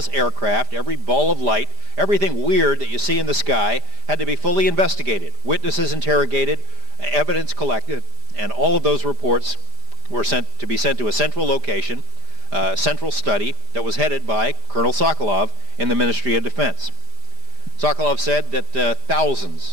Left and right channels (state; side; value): late; left; 5.0 ms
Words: aircraft, every ball of light, everything weird that you see in the sky had to be fully investigated, witnesses interrogated, evidence collected, and all of those reports were sent to a central location, central study that was headed by Colonel Sokolov in the Ministry of Defense. Sokolov said that